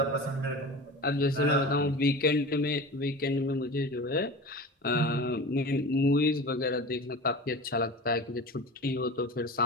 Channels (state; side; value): normal; both; correlation 0.33